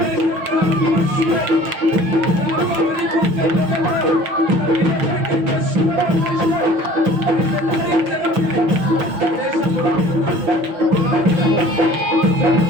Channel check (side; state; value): left; late; 6.1 ms